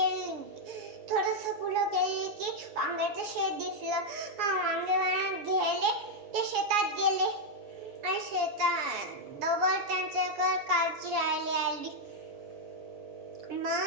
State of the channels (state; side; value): late; left; 7.2 ms